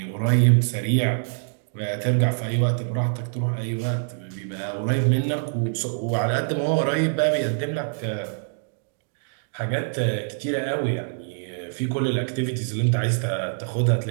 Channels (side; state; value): left; silent; digital silence